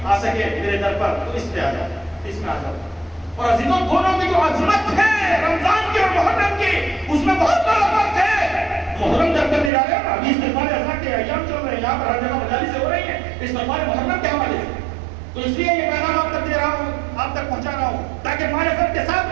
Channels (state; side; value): drops out; left; at 9.7 s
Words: آ سکے میرے در پر تو اس پہ آ جاؤ، اس میں آ جاؤ۔ اور عزیزوں دونوں کی جو عظمت ہے رمضان کی اور محرم کی، اس میں بہت بڑا فرق ہے۔ محرم جب تک نکالے نا، ابھی استغفار اذان کے ایام چل رہے ہیں، یہاں پر ہر جگہ مجالس ہو رہی ہیں استغفار محرم کے حوالے سے، تو اس لیے یہ پیغام آپ تک دے رہا ہوں، آپ تک پہنچا رہا ہوں تاکہ معرفت کے ساتھ